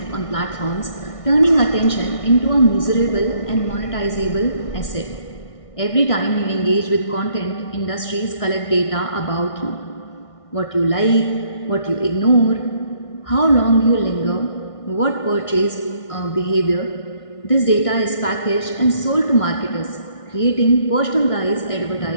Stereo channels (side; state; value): right; late; 1.6 ms